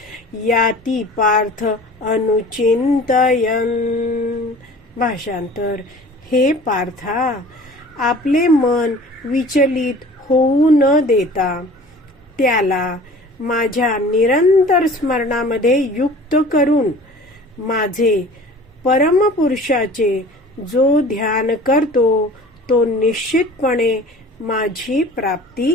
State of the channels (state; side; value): normal; both; correlation 0.44